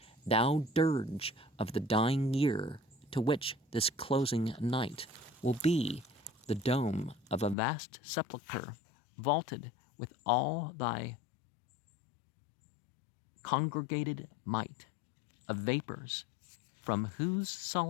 thou dirge of the dying year, to which this closing night will be the dome of a vast sepulchre, vaulted with all thy congregated might of vapors, from whose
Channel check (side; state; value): right; drops out; at 7.6 s